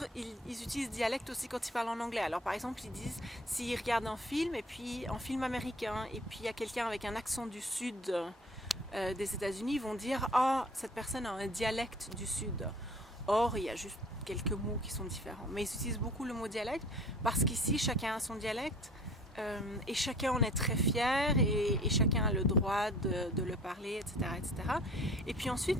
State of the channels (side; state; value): both; normal; correlation 0.48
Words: ils utilisent dialecte aussi quand ils parlent en anglais. Alors par exemple ils disent, s'ils regardent un film et puis un film américain et puis il y a quelqu'un avec un accent du sud des États-Unis, ils vont dire ah, cette personne a un dialecte du sud. Or il y a juste quelques mots qui sont différents, mais ils utilisent beaucoup le mot dialecte parce qu'ici chacun a son dialecte et chacun en est très fier et chacun a le droit de le parler, etc. Et puis